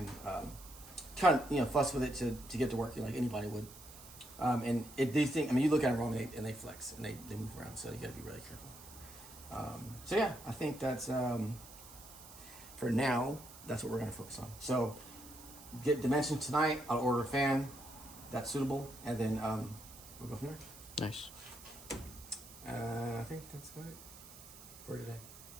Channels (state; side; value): noise; right; hiss, 17 dB below the sound